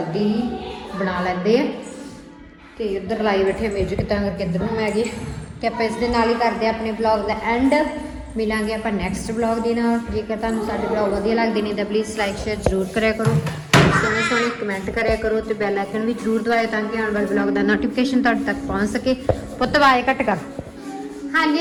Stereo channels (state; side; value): identical; both; correlation 1.00